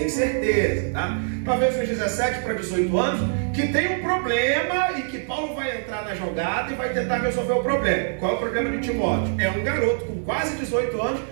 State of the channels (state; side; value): silent; left; digital silence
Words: certeza, tá? Talvez uns 17 para 18 anos, que tem um problema e que Paulo vai entrar na jogada e vai tentar resolver o problema. Qual é o problema de Timóteo? É um garoto com quase 18 anos